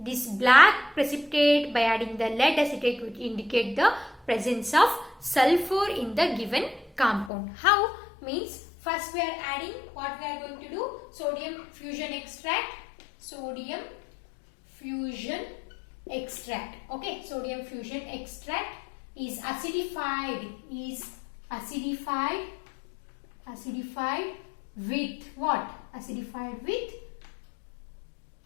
This black precipitate by adding the lead acetate which indicate the presence of sulfur in the given compound. How? Means first we are adding what we are going to do, sodium fusion extract. Sodium fusion extract. Okay, sodium fusion extract is acidified with what? Acidified with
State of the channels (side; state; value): right; drops out; at 7.3 s